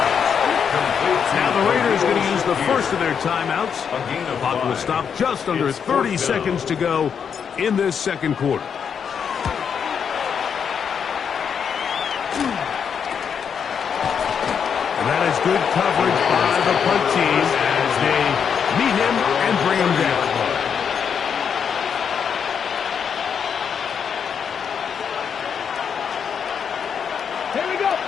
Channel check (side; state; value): right; quieter; 7.2 dB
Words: Now the Raiders going to use the first of their timeouts. The clock will stop just under 30 seconds to go in this second quarter. And that is good coverage by the punt team as they meet him and bring him down. Here we go.